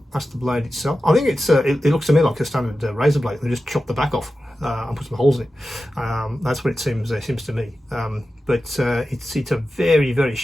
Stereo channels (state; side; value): normal; both; correlation 0.93